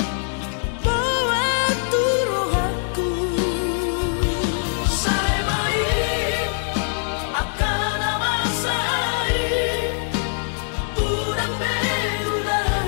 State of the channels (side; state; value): right; silent; digital silence